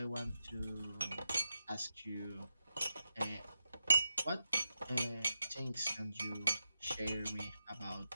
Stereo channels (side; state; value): both; inverted; correlation -0.85